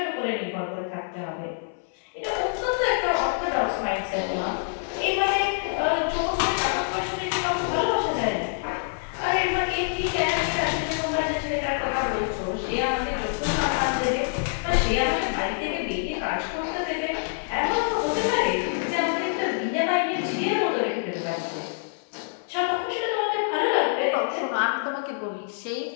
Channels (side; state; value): right; silent; 61 dB below the other